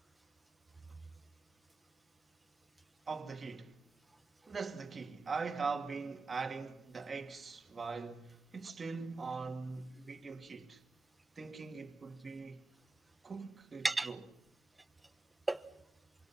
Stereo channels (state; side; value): quieter; left; 3.4 dB